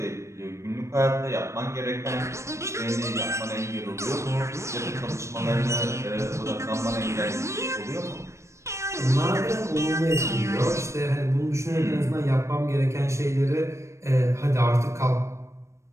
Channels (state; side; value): late; left; 0.14 ms